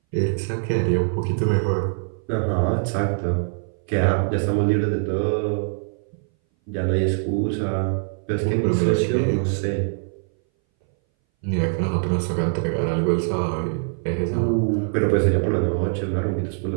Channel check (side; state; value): left; silent; 60 dB below the other